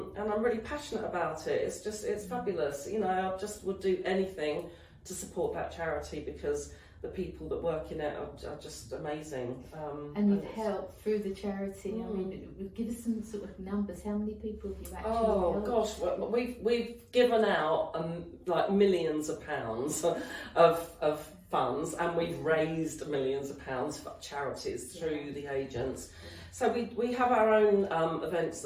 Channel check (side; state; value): both; identical; correlation 1.00